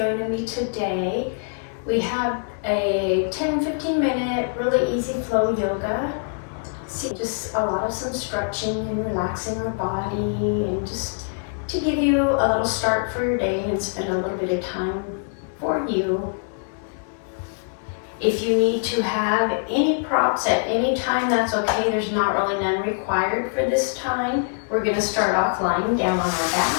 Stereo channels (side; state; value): right; silent; 61 dB below the other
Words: me today. We have a 10-15 minute really easy flow yoga. Just a lot of some stretching and relaxing the body, and just to give you a little start for your day and spend a little bit of time for you. If you need to have any props at any time, that's okay. There's not really none required for this time. We're going to start off lying down on our back.